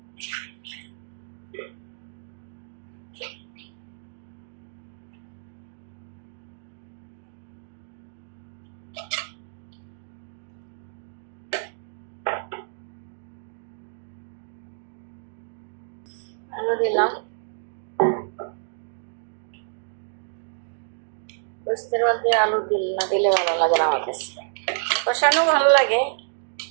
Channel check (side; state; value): left; silent; digital silence